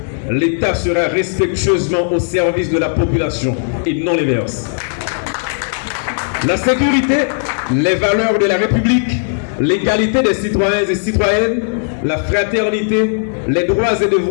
L'État sera respectueusement au service de la population et non l'inverse. La sécurité, les valeurs de la République, l'égalité des citoyens et citoyennes, la fraternité, les droits et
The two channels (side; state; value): right; silent; digital silence